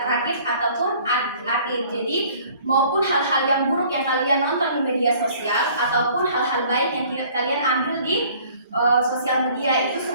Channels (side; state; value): both; inverted; correlation -0.54